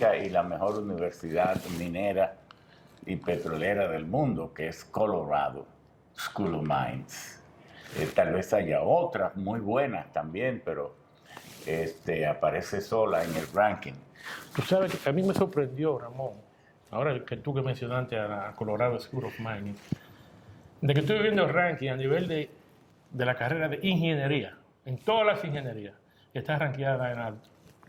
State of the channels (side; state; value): both; identical; correlation 1.00